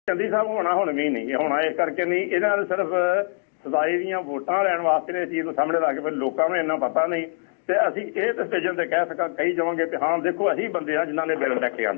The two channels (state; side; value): silent; right; digital silence